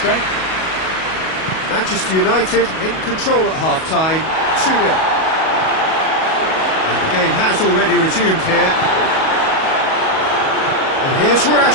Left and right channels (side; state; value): right; late; 37 ms